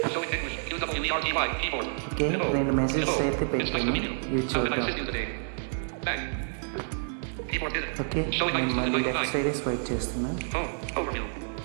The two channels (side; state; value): left; silent; digital silence